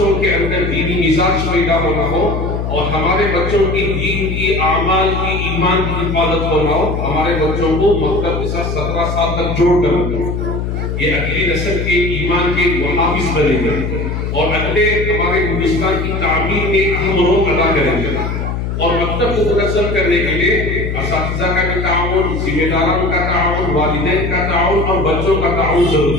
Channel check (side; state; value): left; noise; hum, 3 dB below the sound